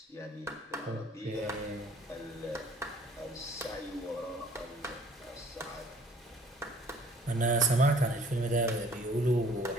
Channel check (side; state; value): both; normal; correlation 0.55